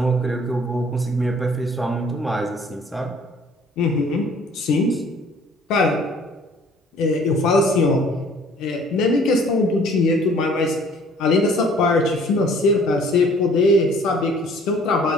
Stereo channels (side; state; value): both; normal; correlation 0.55